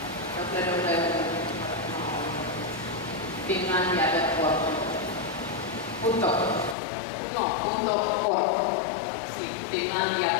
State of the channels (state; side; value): drops out; right; at 6.8 s